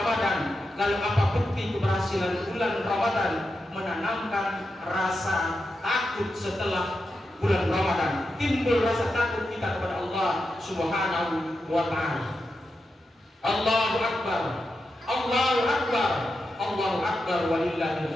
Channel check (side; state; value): both; normal; correlation 0.88